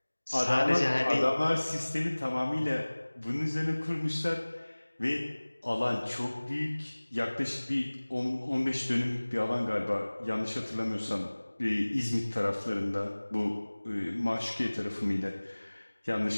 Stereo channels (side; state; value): both; inverted; correlation -1.00